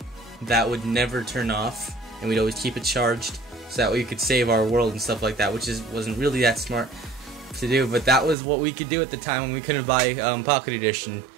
that would never turn off, and we'd always keep it charged so that we could save our world and stuff like that, which wasn't really that smart to do, but that was what we could do at the time when we couldn't buy Pocket Edition,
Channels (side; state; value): left; drops out; at 8.3 s